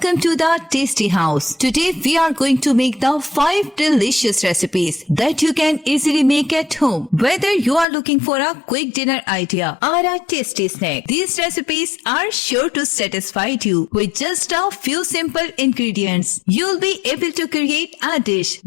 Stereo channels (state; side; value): drops out; right; at 7.9 s